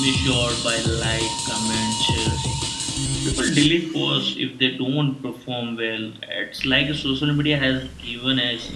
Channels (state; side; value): identical; both; correlation 1.00